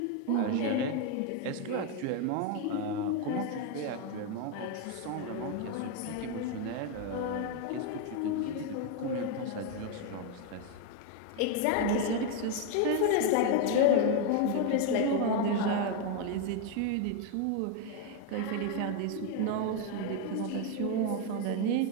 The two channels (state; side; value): different; both; correlation 0.01